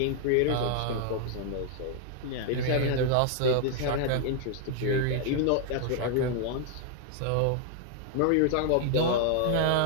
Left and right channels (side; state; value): both; different; correlation 0.00